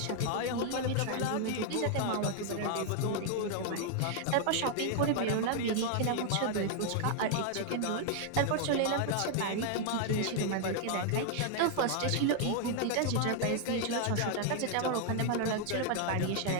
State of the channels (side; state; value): both; different; correlation 0.00